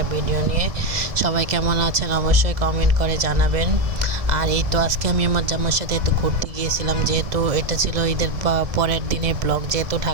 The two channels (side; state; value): left; late; 1.7 ms